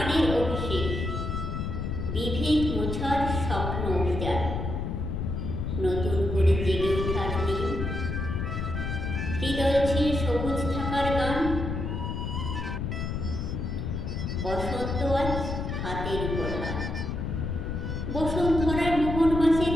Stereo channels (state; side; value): noise; left; rumble, 3 dB below the sound